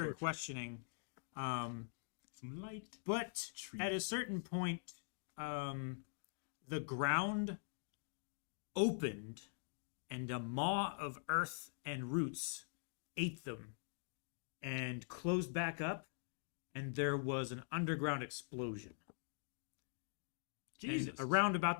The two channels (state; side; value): silent; right; digital silence